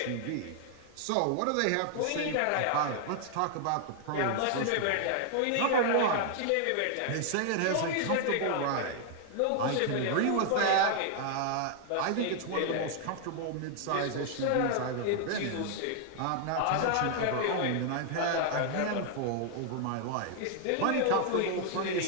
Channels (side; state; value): both; different; correlation 0.00